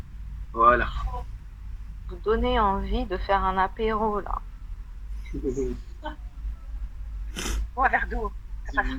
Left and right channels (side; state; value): both; identical; correlation 1.00